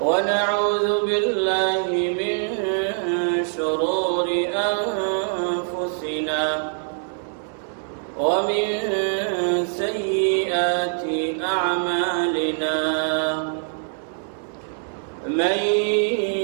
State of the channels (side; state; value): left; silent; 62 dB below the other